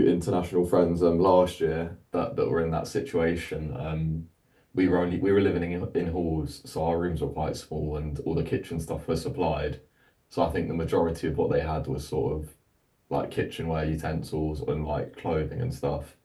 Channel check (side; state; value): both; identical; correlation 1.00